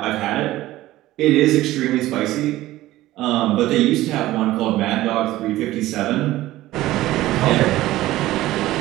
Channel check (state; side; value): quieter; left; 16.2 dB